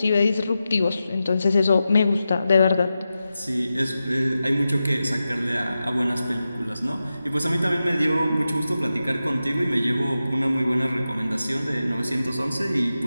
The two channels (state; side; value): inverted; both; correlation -0.92